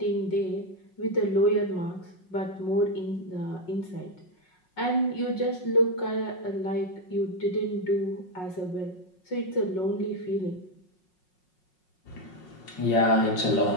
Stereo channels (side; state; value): right; late; 5.5 ms